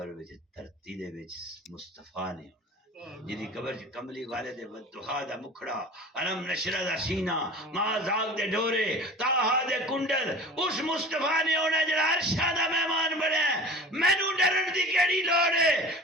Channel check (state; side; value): normal; both; correlation 0.38